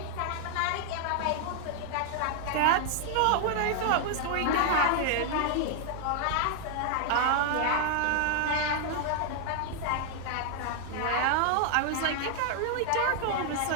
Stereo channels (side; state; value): both; different; correlation 0.00